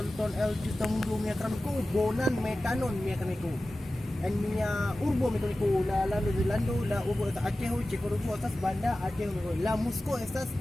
El Justamundo Miakramico, Bonan Metanon Miakramico. En Mia Urbo Miakramico, la Lando, la Urbo Acheho, Checorubo, estas Banda, Acheho, la Musco, estas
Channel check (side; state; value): both; normal; correlation 0.95